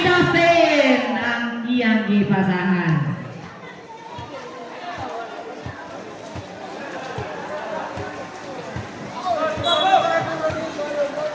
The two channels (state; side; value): identical; both; correlation 1.00